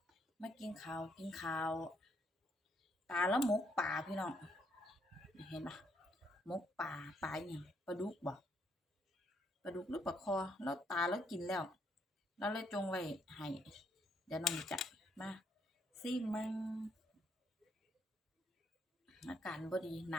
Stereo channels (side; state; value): both; normal; correlation 0.72